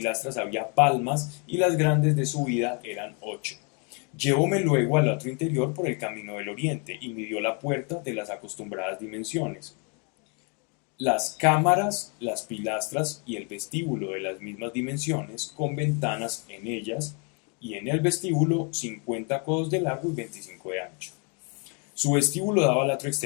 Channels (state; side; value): quieter; right; 35.8 dB